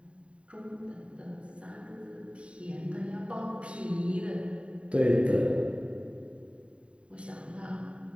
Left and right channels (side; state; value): left; late; 0.060 ms